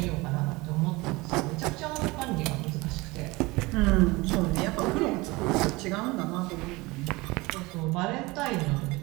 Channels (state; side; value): quieter; left; 22.8 dB